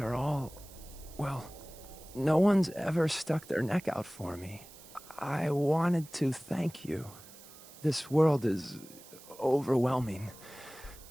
are all... well, no one's ever stuck their neck out for me. I wanted to thank you. This world is overwhelming.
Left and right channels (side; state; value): right; noise; hiss, 19 dB below the sound